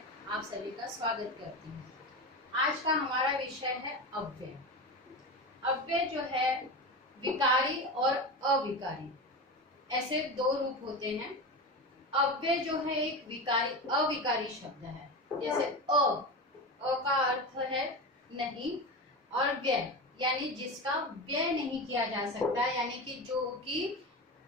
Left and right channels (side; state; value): both; normal; correlation 0.23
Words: आप सभी का स्वागत करती हूँ। आज का हमारा विषय है अव्यय। अव्यय जो है विकारी और अविकारी, ऐसे दो रूप होते हैं। अव्यय जो है एक विकारी अविकारी शब्द है, जैसे अ का अर्थ है नहीं, और व्यय यानी जिसका व्यय नहीं किया जा सकता, यानी कि जो कि